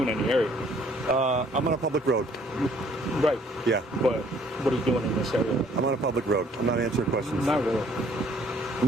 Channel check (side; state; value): both; normal; correlation 0.60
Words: in the area. I'm on a public road. Right. Yeah. But what are you doing in this area? I'm on a public road. I'm not answering questions. Not really.